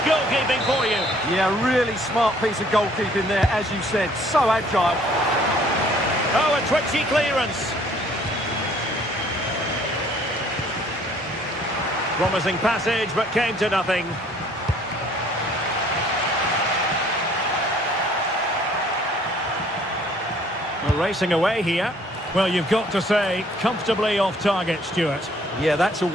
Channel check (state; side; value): normal; both; correlation 0.59